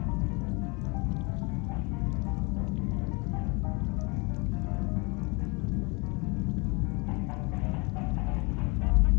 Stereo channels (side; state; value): right; quieter; 29.0 dB